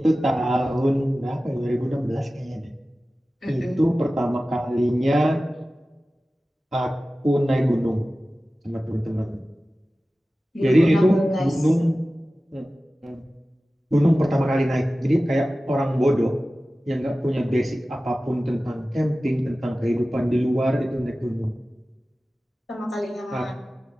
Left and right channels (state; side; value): normal; both; correlation 0.96